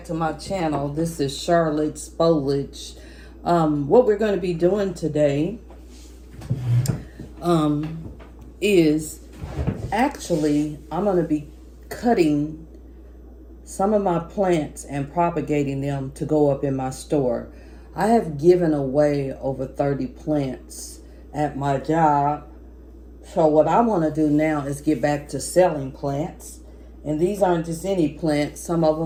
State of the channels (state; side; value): identical; both; correlation 1.00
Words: to my channel. This is Charlotte's Foliage. What we're going to be doing today is actually I'm going to be cutting some of my plants and propagating them to go up in my store. I have given away over 30 plants at my job. So what I want to do now is get back to selling plants. And these aren't just any plants. Some of